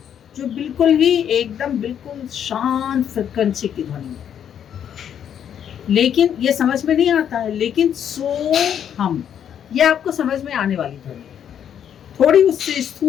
जो बिल्कुल ही एकदम बिल्कुल शांत फ्रीक्वेंसी की ध्वनि है। लेकिन ये समझ में नहीं आता है। लेकिन सो हम, ये आपको समझ में आने वाली ध्वनि है, थोड़ी उससे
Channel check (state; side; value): quieter; right; 9.1 dB